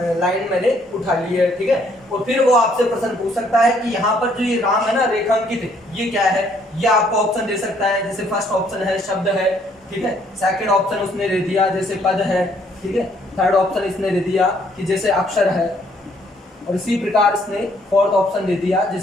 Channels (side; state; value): both; normal; correlation 0.66